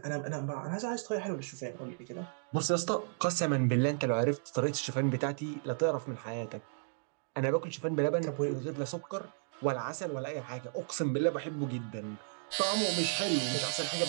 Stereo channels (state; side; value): silent; left; digital silence